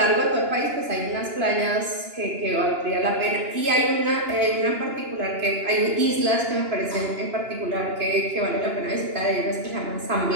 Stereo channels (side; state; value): left; late; 2.9 ms